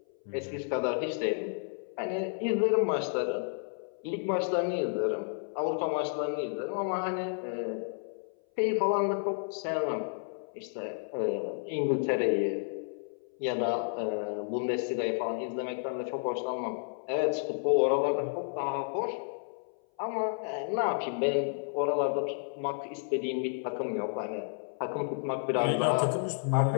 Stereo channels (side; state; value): right; silent; 57 dB below the other